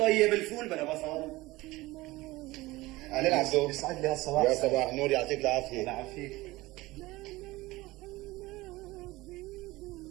الفول بلا بصل. اهلين عبدو. يسعد لي هالصباح. يا صباح النور يعطيك العافية. الله يعافيك.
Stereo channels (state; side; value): quieter; left; 19.7 dB